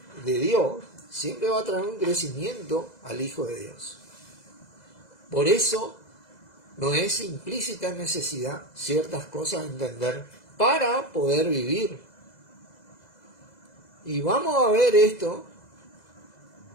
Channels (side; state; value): right; late; 2.0 ms